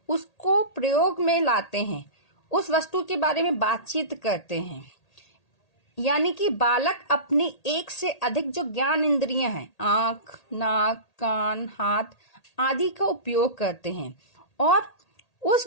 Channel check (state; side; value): late; right; 1.8 ms